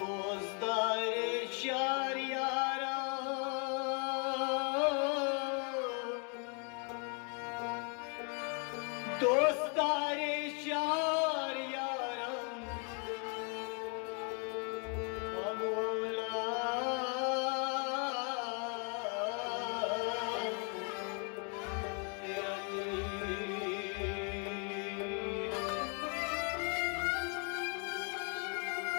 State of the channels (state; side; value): quieter; right; 37.8 dB